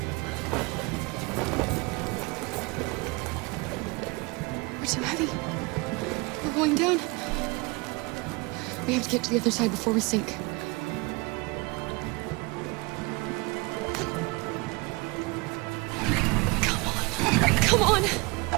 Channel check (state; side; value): quieter; left; 26.4 dB